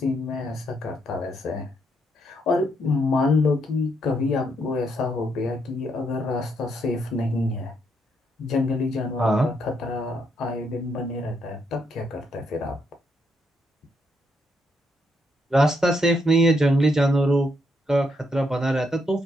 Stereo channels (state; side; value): normal; both; correlation 0.76